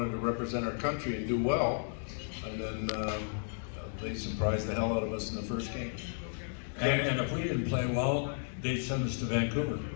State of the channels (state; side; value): silent; right; digital silence